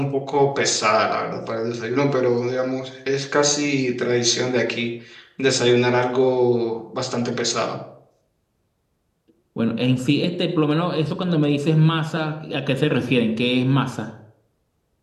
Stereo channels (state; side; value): identical; both; correlation 1.00